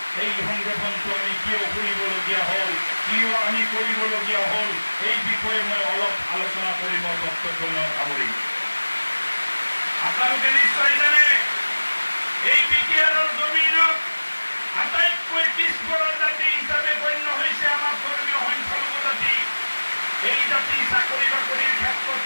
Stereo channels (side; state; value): both; inverted; correlation -1.00